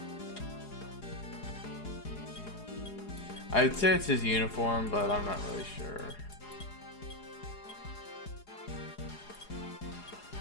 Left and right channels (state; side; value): late; right; 4.8 ms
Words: I'd say it's his uniform, but I'm not really sure.